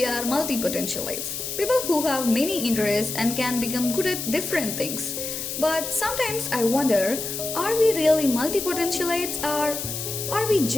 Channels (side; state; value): left; noise; hiss, 5 dB below the sound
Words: are multi-potentialites, people who have many interests and can become good at different things. But sometimes I wonder, are we really multi-potentialites or are we